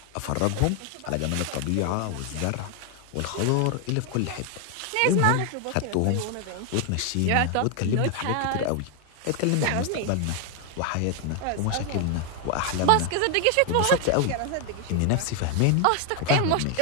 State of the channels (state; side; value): different; both; correlation 0.00